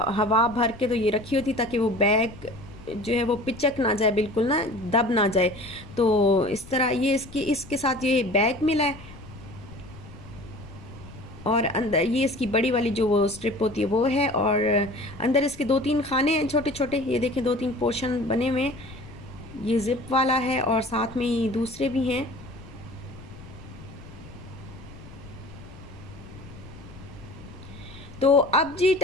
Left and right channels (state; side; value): noise; left; rumble, 17 dB below the sound